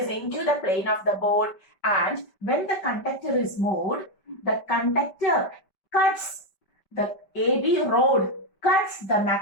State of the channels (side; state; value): right; late; 5.2 ms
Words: into the plane of the board, and when the conductor is moved, the conductor cuts, the AB rod cuts the